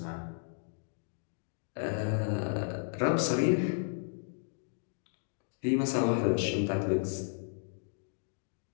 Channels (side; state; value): right; silent; digital silence